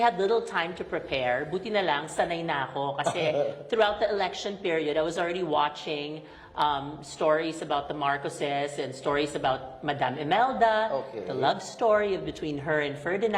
little time to prepare. Buti na lang, sanay na ako. Kasi throughout the election period, I was already watching stories about the Marcoses and stories about Madame Imelda, the love story between her and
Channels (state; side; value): identical; both; correlation 1.00